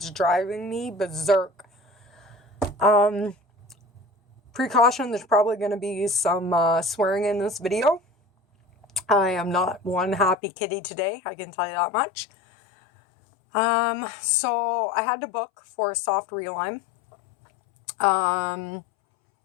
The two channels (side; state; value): right; drops out; at 10.4 s